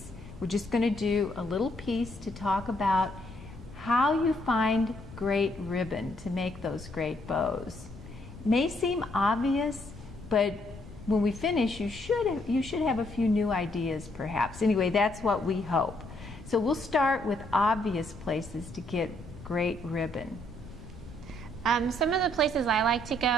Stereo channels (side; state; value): left; noise; rumble, 16 dB below the sound